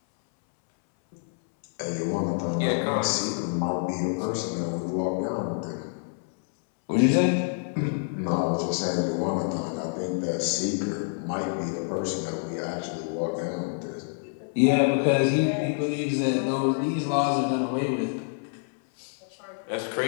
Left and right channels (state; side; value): silent; right; 60 dB below the other